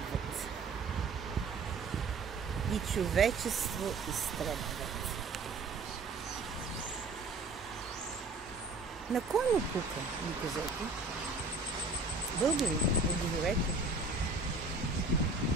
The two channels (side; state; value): left; quieter; 3.5 dB